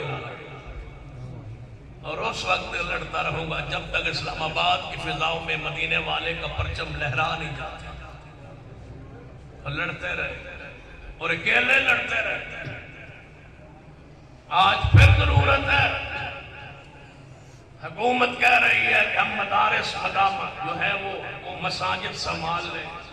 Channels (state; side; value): identical; both; correlation 1.00